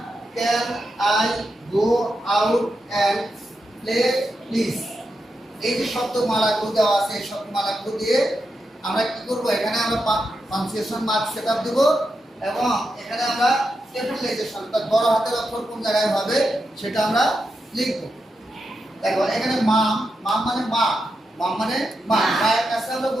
can I go out and play please. এই যে শব্দমালাগুলো দেওয়া আছে, এই শব্দমালাগুলো দিয়ে আমরা কি করব, এখানে আমরা পাঞ্চুয়েশন মার্ক সেটআপ দেব এবং এখানে আমরা ক্যাপিটালাইজেশন বড় হাতের অক্ষর কোন জায়গায় হবে সেটা আমরা লিখব। দেখো এখানে মাম, মাম মানে মা, মাম মানে মা। মায়ের কাছে আমরা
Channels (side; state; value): both; normal; correlation 0.86